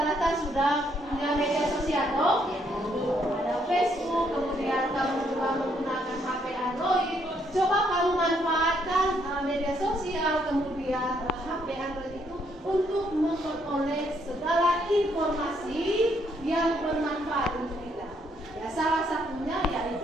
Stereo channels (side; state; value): both; normal; correlation 0.72